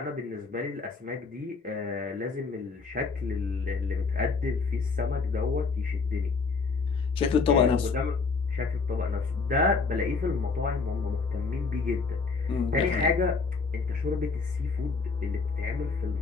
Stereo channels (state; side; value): quieter; right; 4.5 dB